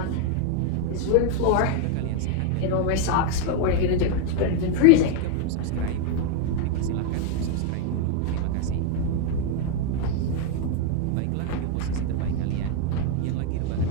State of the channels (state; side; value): different; both; correlation 0.01